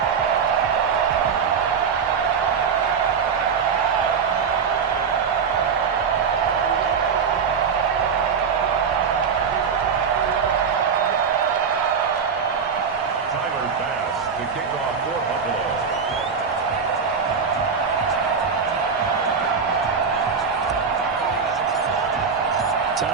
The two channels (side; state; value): left; quieter; 6.1 dB